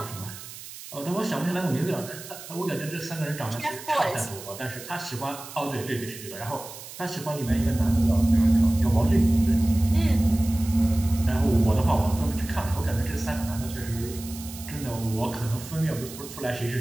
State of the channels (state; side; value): noise; right; hiss, 14 dB below the sound